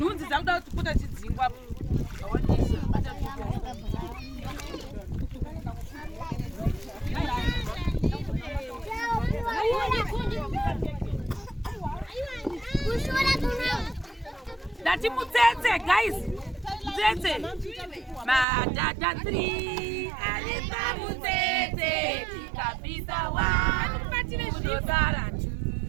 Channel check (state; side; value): drops out; left; at 18.4 s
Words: dzakuda kuputa chidzingwa. Dati mutsetse guys. Mutsetse. Madada 3 alipa mutsetse kabisa 1 kudodara